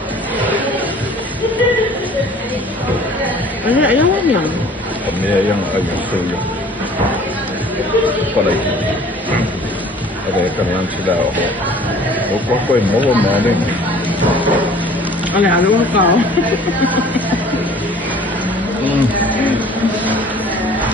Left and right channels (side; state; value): both; normal; correlation 0.50